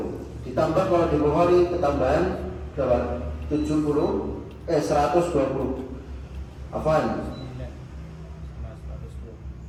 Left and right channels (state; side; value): identical; both; correlation 1.00